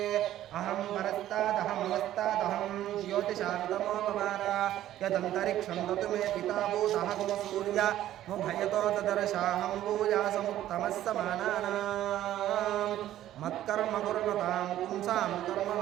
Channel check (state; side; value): quieter; left; 12.9 dB